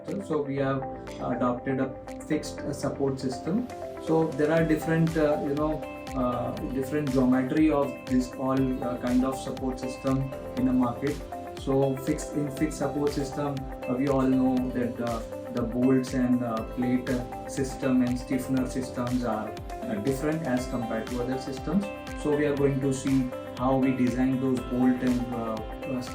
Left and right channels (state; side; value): identical; both; correlation 1.00